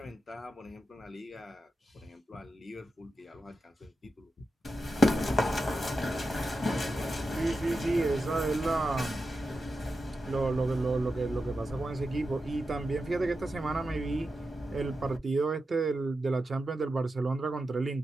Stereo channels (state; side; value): normal; both; correlation 0.89